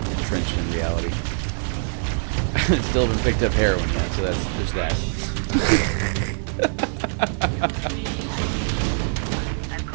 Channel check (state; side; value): silent; left; 63 dB below the other